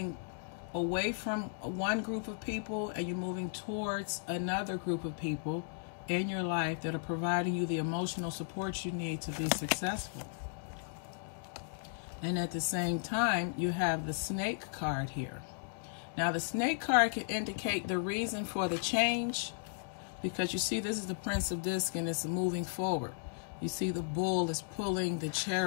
away from one group of people, and you're moving towards another group of people in your life that are providing you the emotional support you need to be successful. And at the same time, you have the Snake card here. Now, the Snake card can indicate the reason for the change, because you see this is the Prince of Disc, and it's moving forward. You see the bull is pulling the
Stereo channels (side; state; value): right; silent; digital silence